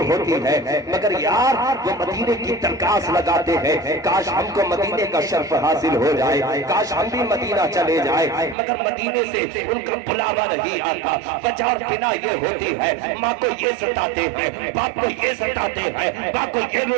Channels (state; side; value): drops out; left; at 8.6 s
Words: ہوتی ہے، مگر یار وہ مدینے کی درخواست لگاتے ہیں کاش ہم کو مدینے کا شرف حاصل ہو جائے، کاش ہم بھی مدینہ چلے جائے، مگر مدینے سے ان کا بلاوا نہیں آتا۔ وجہ اور بنا یہ ہوتی ہے ماں کو یہ ستاتے ہیں، باپ کو یہ ستاتے ہیں، باپ کو یہ